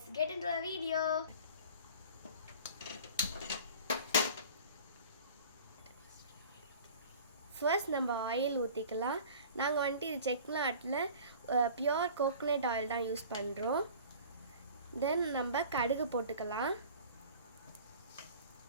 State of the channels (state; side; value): inverted; both; correlation -0.43